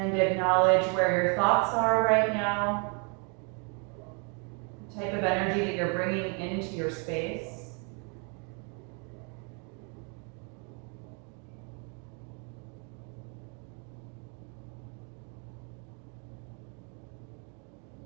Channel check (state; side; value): quieter; left; 33.4 dB